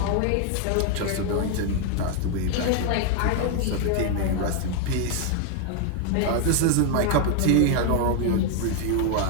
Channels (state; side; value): different; both; correlation 0.01